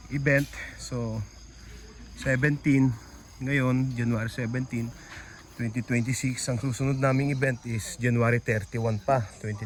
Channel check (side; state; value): both; identical; correlation 1.00